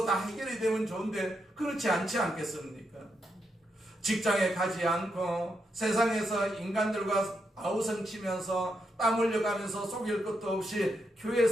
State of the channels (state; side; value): normal; both; correlation 0.82